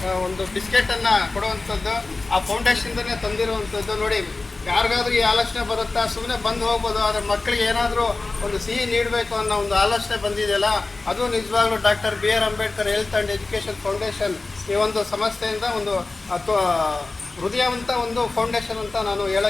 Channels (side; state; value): right; quieter; 3.5 dB